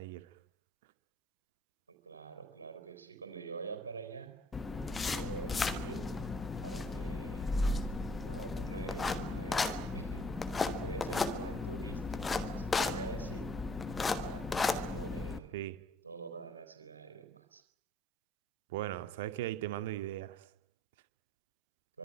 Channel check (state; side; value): normal; both; correlation 0.63